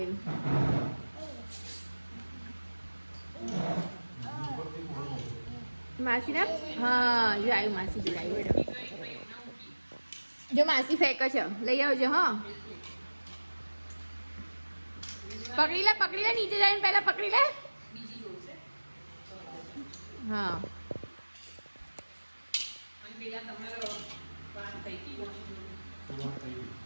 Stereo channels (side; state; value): both; inverted; correlation -1.00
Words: માસી ના હા જોડાયું. માસી જોડાયું. બેડો જો માસી ફેંકે છે. લઈ આવજો. હા પકડી લે પકડી લે. નીચે જઈને પહેલા પકડી લે. હા